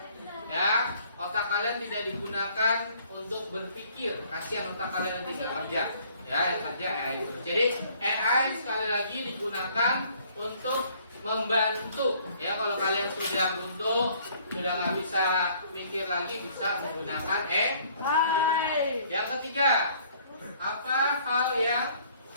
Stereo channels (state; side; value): inverted; both; correlation -0.59